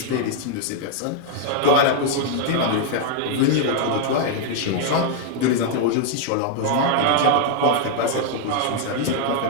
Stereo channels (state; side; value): different; both; correlation 0.00